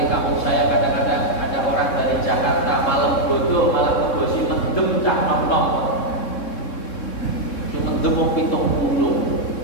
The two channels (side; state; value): right; late; 3.7 ms